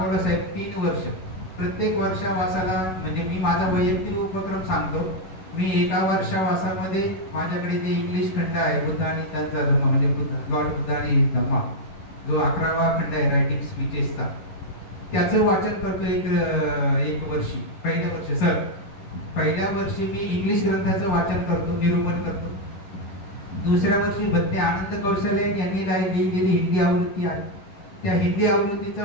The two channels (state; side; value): late; right; 11 ms